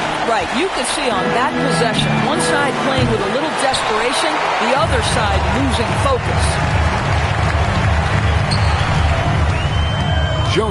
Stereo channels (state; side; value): identical; both; correlation 1.00